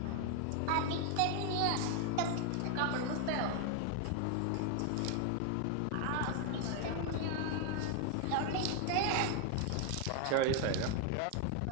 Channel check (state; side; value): different; both; correlation 0.00